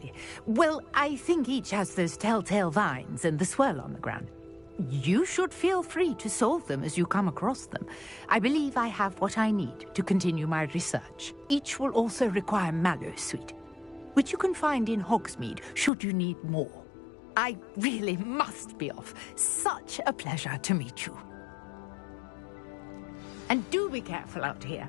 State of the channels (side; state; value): right; drops out; at 15.9 s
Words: Well, I think each has those telltale vines and the swirl on the ground. You should feel free to solve them as you come across them. I believe I have what I need to continue my research. Each will also require mallow sweet, which you can find in Hogsmeade should you need more. I really must be off. Such a pleasure to meet you. And do be careful out